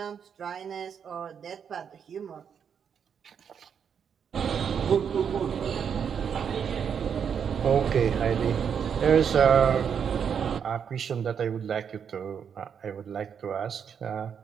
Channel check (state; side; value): quieter; left; 7.4 dB